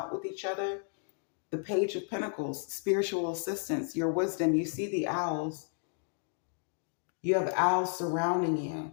with each other. The Page of Pentacles, spiritual assistance, your wisdom. You see the owls. You have owls surrounding you.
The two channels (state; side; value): silent; right; 56 dB below the other